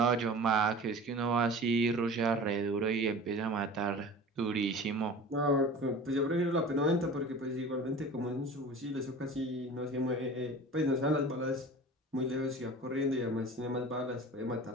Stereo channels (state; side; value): normal; both; correlation 0.38